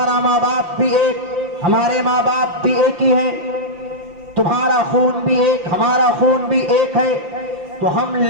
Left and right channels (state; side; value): late; left; 5.8 ms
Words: ماں باپ بھی ایک، ہمارے ماں باپ بھی ایک ہی ہیں، تمہارا خون بھی ایک، ہمارا خون بھی ایک ہے، تو ہم